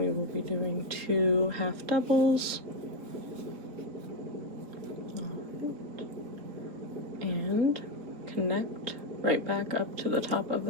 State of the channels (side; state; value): left; late; 4.3 ms